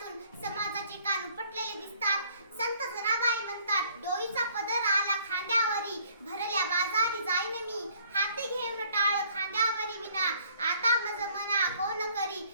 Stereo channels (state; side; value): inverted; both; correlation -0.60